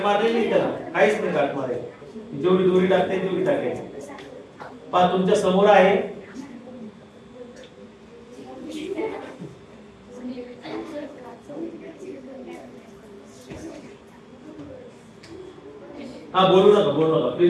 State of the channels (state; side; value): identical; both; correlation 1.00